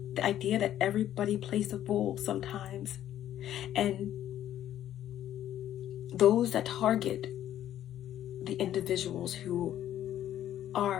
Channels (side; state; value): right; quieter; 11.7 dB